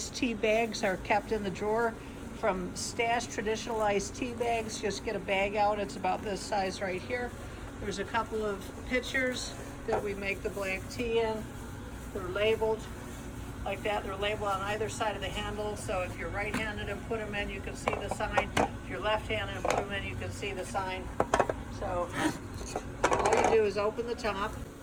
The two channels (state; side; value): identical; both; correlation 1.00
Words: tea bags are kept in the drawer from Stash Traditional Iced Tea Bags. Just get a bag out, it's about this size right here. There's a couple of pitchers that we make the black tea in. They're labeled like that. They're labeled on either side of the handle, so if you're right-handed and put them in, you can see the sign. If you're left-handed and put them in, you can see the sign. So all you do is open the top,